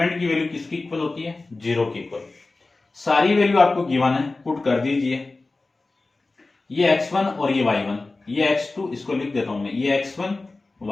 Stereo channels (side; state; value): right; quieter; 3.4 dB